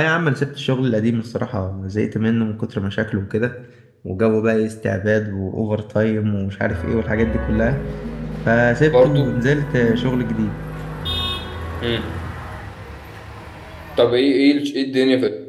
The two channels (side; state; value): both; identical; correlation 1.00